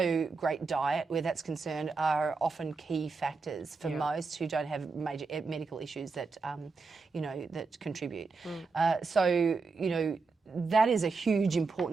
great diet, where that's concerned, are often key factors for most who don't have major medical issues that that contribute. So that is a huge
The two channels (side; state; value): left; quieter; 4.4 dB